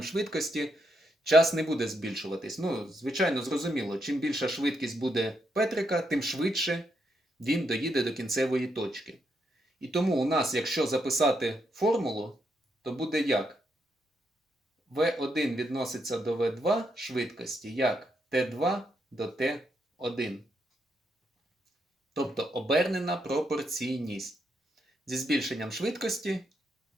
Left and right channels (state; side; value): normal; both; correlation 0.79